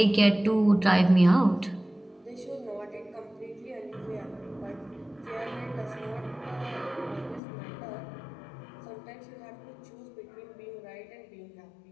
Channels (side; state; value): right; drops out; at 7.4 s